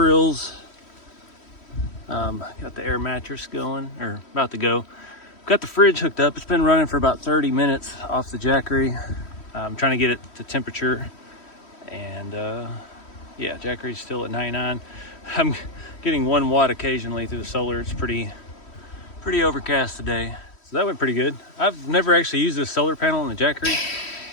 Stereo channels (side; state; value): right; late; 3.1 ms